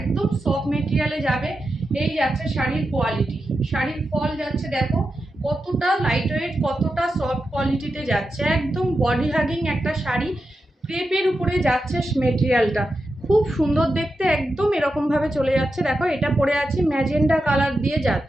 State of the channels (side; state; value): both; normal; correlation 0.89